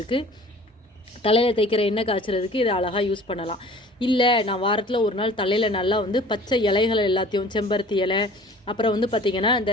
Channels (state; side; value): normal; both; correlation 0.47